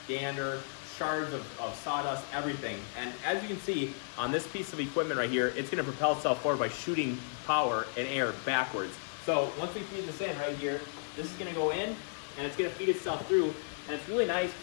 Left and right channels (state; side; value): silent; right; 55 dB below the other